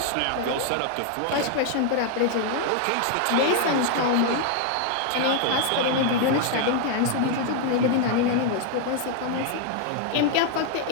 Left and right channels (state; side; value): different; both; correlation 0.00